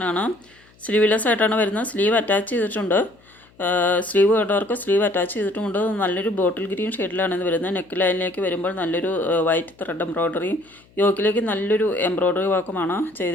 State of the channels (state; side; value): noise; left; hum, 30 dB below the sound